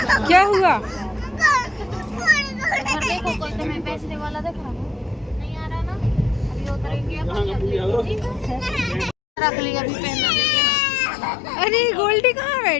क्या हुआ? मैं पैसे वाला देख रहा हूँ, नहीं आ रहा ना, अभी उतरेंगे रख लिया, अभी पहनना। अरे गोल्डी कहाँ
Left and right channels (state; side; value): drops out; right; at 9.2 s